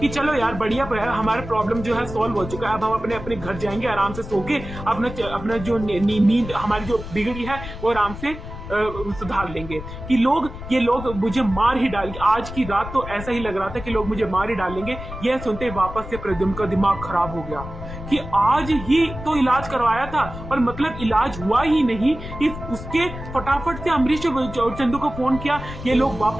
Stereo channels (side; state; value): left; noise; rumble, 11 dB below the sound